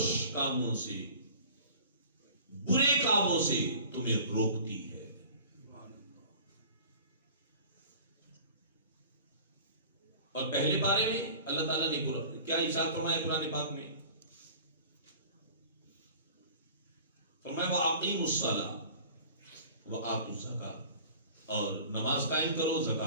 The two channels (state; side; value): inverted; both; correlation -0.43